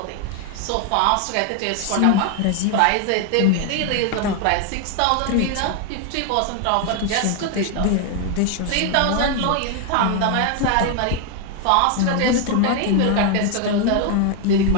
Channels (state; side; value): different; both; correlation 0.01